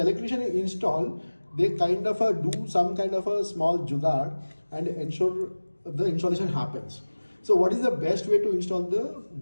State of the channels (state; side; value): inverted; both; correlation -1.00